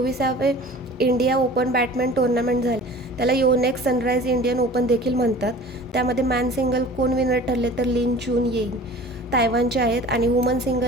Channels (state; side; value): normal; both; correlation 0.43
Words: इंडिया ओपन बॅडमिंटन टुर्नामेंट झाले. त्याला योनेक्स सनराइज इंडियन ओपन देखील म्हणतात. त्यामध्ये मॅन सिंगल कोण विनर ठरले? तर लिन चून येईंग तायवानचे आहेत आणि वुमन